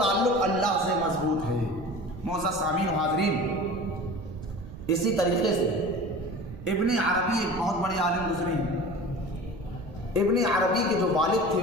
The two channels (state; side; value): noise; right; rumble, 14 dB below the sound